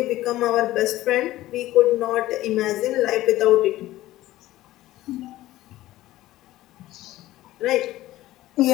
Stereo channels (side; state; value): right; quieter; 15.9 dB